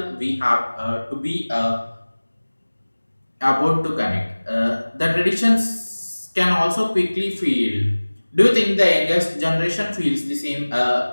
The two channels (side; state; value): both; inverted; correlation -1.00